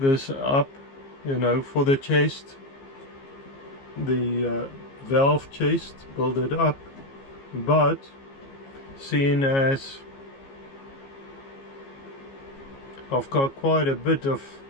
up, you know, for the chest, the valve chest, build it up, but seeing as I've got quite a bit of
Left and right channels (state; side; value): late; right; 15 ms